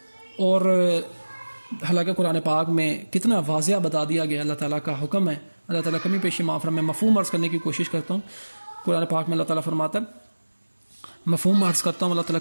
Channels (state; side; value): inverted; both; correlation -1.00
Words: اور حالانکہ قرآن پاک میں کتنا واضح بتا دیا گیا، اللہ تعالیٰ کا حکم ہے، اللہ تعالیٰ کمی پیشی معاف فرمائے۔ میں مفہوم عرض کرنے کی کوشش کرتا ہوں، قرآن پاک میں اللہ تعالیٰ فرماتا ہے، مفہوم عرض کرتا ہوں، اللہ تعالیٰ